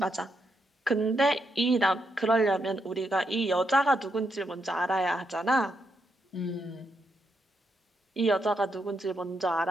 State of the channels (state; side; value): normal; both; correlation 0.80